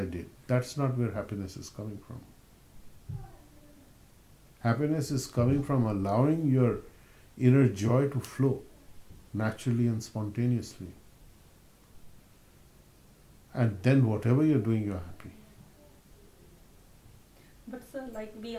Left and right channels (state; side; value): identical; both; correlation 1.00